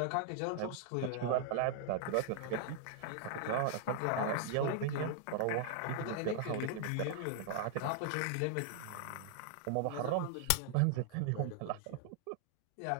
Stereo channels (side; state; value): both; different; correlation -0.01